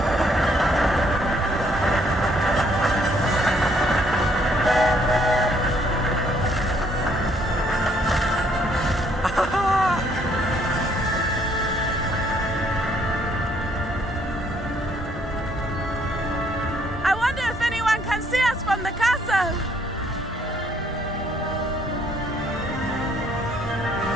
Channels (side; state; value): both; normal; correlation 0.67